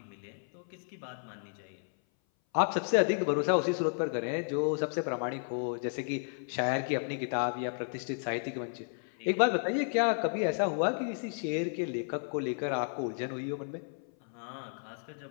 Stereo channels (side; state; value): right; silent; 56 dB below the other